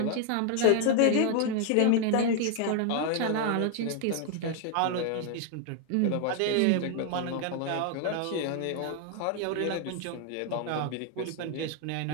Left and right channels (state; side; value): different; both; correlation 0.00